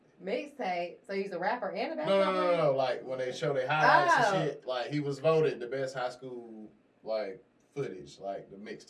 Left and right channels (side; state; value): both; identical; correlation 1.00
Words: Mixtape? So he's a rapper and a basketball player? No. Like when they show their highlights and shit, like he was voted the best high school like footage, like the